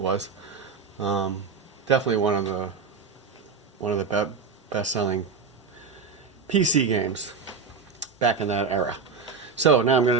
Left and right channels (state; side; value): quieter; left; 5.4 dB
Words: definitely one of the best-selling PC games back in that era. So now I'm going